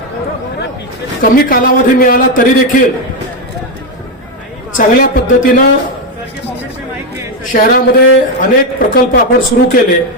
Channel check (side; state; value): both; normal; correlation 0.07